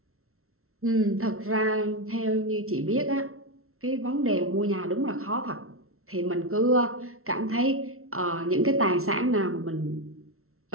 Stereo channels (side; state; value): left; late; 0.62 ms